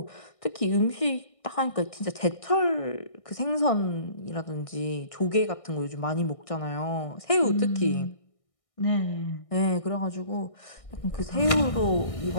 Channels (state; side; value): late; right; 1.6 ms